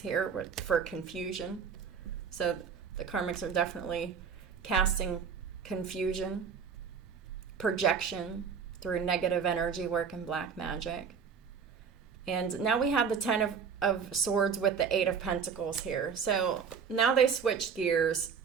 for confusion. So the karmics are definitely casting confusion, projection through negative energy work and black magic. And now we have the of Swords with the Eight of Pentacles here. So now they switched gears,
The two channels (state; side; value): quieter; left; 6.5 dB